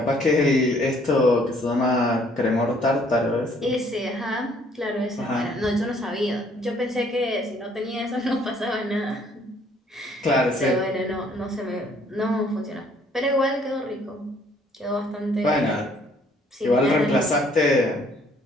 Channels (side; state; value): both; normal; correlation 0.62